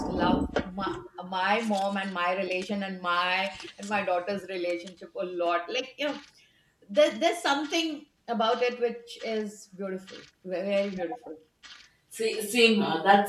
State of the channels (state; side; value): identical; both; correlation 1.00